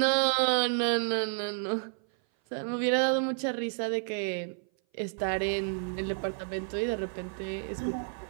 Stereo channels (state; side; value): silent; left; 56 dB below the other